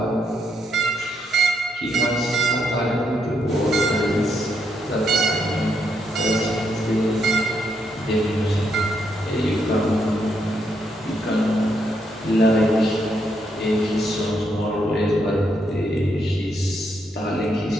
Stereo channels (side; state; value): both; normal; correlation 0.77